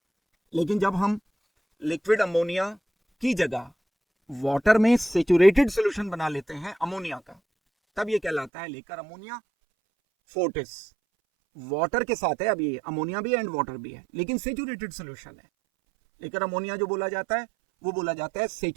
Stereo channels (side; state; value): left; drops out; at 8.5 s